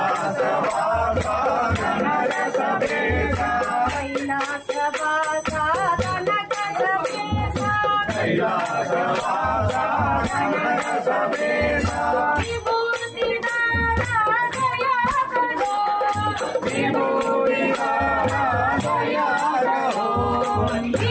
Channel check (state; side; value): identical; both; correlation 1.00